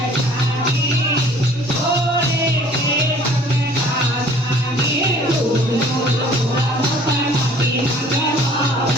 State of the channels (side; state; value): both; normal; correlation 0.53